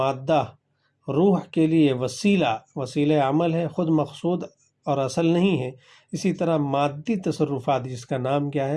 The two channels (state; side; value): identical; both; correlation 1.00